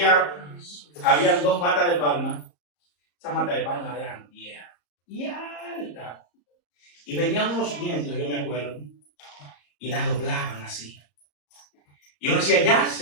había 2 matas de palma. Esas matas de palma eran viejas y altas. Y venían unos vientos, yo me acuerdo, y la doblaban así. Y uno decía,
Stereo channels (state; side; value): late; right; 34 ms